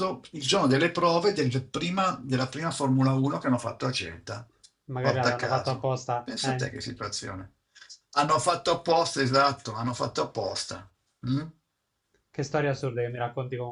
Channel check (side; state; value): both; identical; correlation 1.00